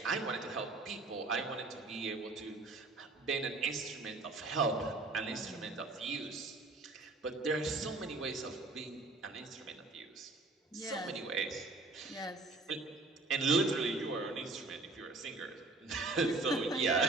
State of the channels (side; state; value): left; quieter; 3.3 dB